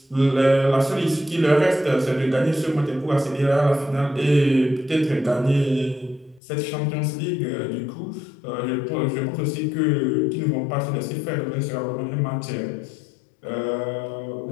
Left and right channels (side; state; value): right; drops out; at 6.4 s